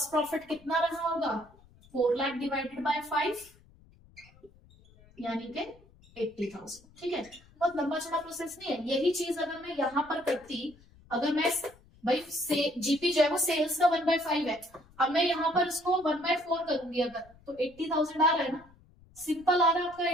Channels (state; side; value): noise; left; rumble, 27 dB below the sound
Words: प्रॉफिट कितना रहा होगा, 4 लाख डिवाइडेड बाय 5, यानी कि 80,000। ठीक है, बहुत लंबा चौड़ा प्रोसेस नहीं है। यही चीज अगर मैं यहाँ पर करती, अगर मैं भाई से जीपी जो है वो सेल्स का 1/5 है, अब मैं यहाँ पर इसको 1/4 करूंगी अगर, तो 80,000 आ रहा है ना, सिंपल आ रहा है आपका